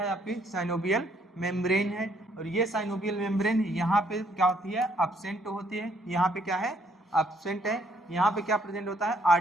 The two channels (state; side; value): normal; both; correlation 0.68